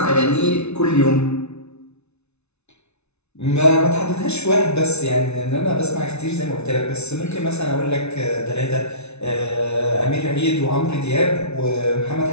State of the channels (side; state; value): right; late; 0.81 ms